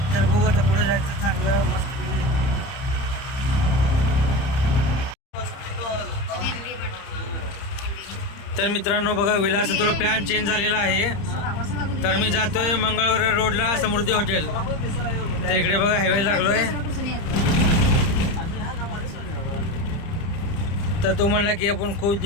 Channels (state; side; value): late; right; 30 ms